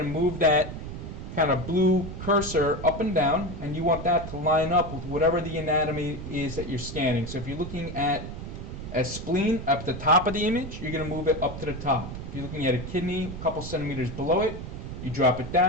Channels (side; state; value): right; noise; rumble, 8 dB below the sound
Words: and move that kind of blue cursor up and down, and you want that to line up with whatever the anatomy is that you're scanning. So if you're looking at a spleen up at the top of the image, you're going to move it up to the top. If you're looking at a kidney a couple centimeters below it, you drop it